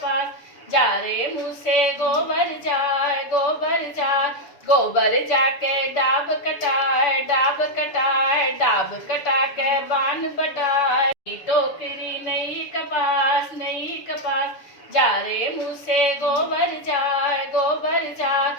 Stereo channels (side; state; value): right; late; 7.0 ms